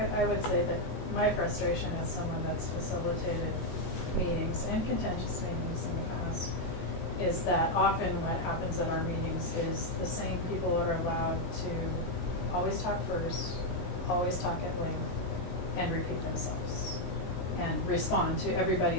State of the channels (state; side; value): late; right; 22 ms